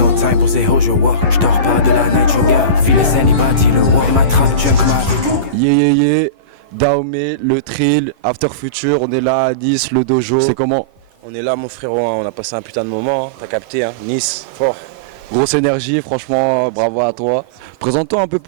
time pour ces hoes, je vois. J'dors pas de la night, je vois. Feel the anybody, le war. Et ma trap junk avec. Yeah. Dahomey, le Trill, After Future, on est là à Nice, le dojo. C'est comment? On est là mon frérot, hein. On a passé un putain de moment, hein. T'as capté, hein. Nice, fort. Grosse énergie, franchement, bravo à toi. Présente-toi un peu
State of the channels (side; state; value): left; late; 11 ms